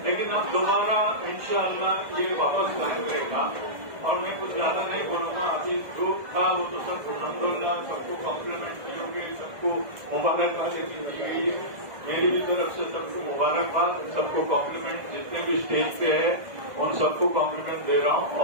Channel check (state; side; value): late; left; 1.6 ms